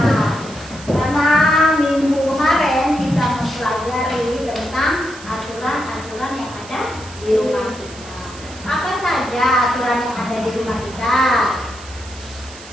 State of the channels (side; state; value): right; noise; hiss, 18 dB below the sound